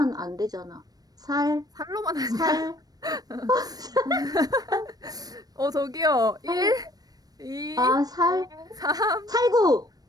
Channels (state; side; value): late; left; 0.19 ms